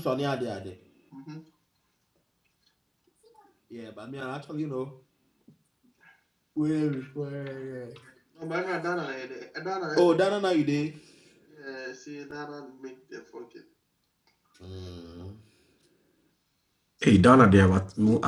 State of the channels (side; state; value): both; identical; correlation 1.00